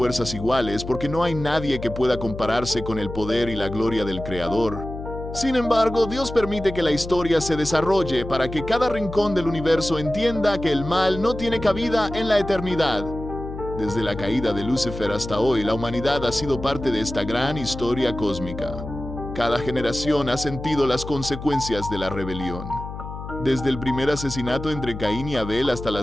iguales, porque no hay nadie que pueda compararse con el poder y la gloria del Creador. Sin embargo, Dios permite que la historia se desarrolle para que cada rincón del universo entienda que el mal no tiene cabida en la eternidad. Desde la caída de Lucifer hasta hoy, la humanidad ha sido parte de esta gran historia cósmica. Cada generación ha sentido las consecuencias de la rebelión. Desde el primer asesinato entre Caín y Abel hasta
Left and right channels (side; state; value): left; noise; hum, 9 dB below the sound